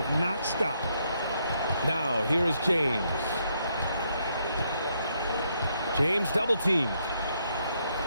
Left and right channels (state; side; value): inverted; both; correlation -0.75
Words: not stopped. Now, here is James. James double-teamed.